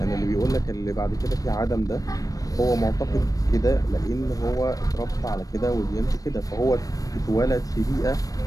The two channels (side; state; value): right; late; 0.17 ms